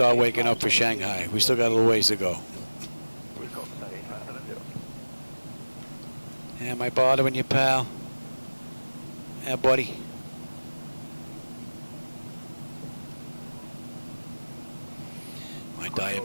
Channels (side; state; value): both; inverted; correlation -1.00